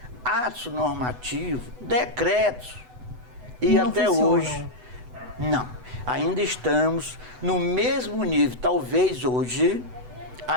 atos normativos, decretos. E não até funcionam. hoje, não. Ainda estamos no mesmo nível, talvez hoje,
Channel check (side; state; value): left; late; 8.0 ms